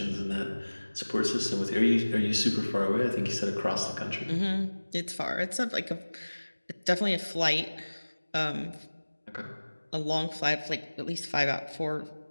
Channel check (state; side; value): inverted; both; correlation -1.00